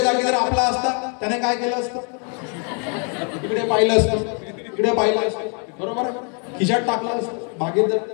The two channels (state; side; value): quieter; right; 39.9 dB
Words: जागी जर आपला असता त्याने काय केलं असतं? इकडे पाहिलं असतं, इकडे पाहिलं असतं, बरोबर, खिशात टाकलं असतं, बागेत जर